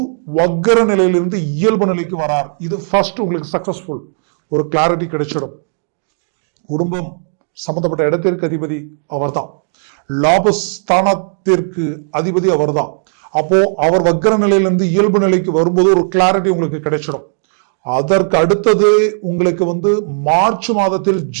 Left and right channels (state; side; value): silent; left; digital silence